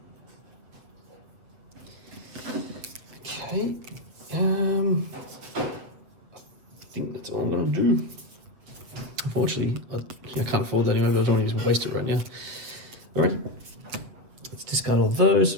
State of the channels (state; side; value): late; left; 7.6 ms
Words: Okay. I think that's all I'm going to do. Unfortunately, I can't afford that anymore, but I don't want to just waste it right now. Alright. Let's discard all those.